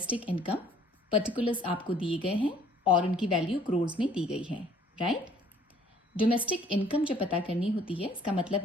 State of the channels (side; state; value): both; normal; correlation 0.58